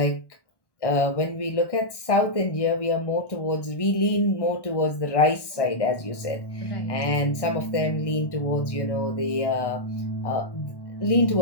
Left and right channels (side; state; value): right; late; 1.1 ms